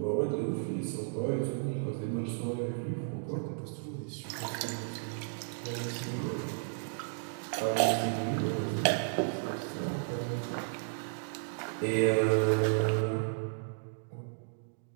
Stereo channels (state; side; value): silent; left; digital silence